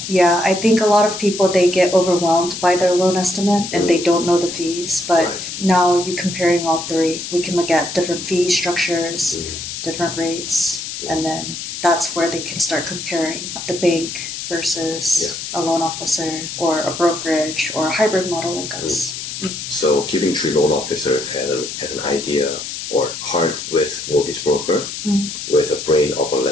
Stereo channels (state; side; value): noise; left; hiss, 7 dB below the sound